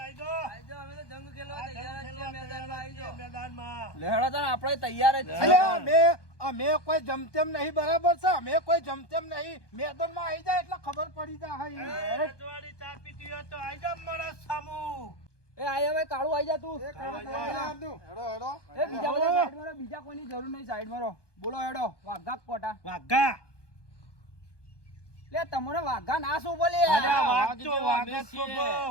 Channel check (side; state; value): right; late; 1.2 ms